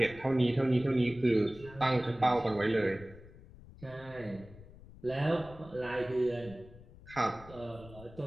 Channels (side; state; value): left; noise; rumble, 19 dB below the sound